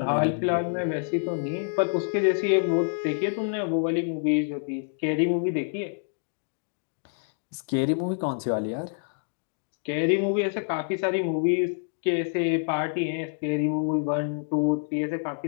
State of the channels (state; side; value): silent; right; digital silence